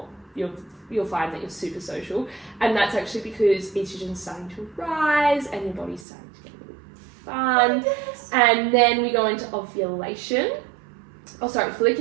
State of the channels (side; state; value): left; drops out; at 6.1 s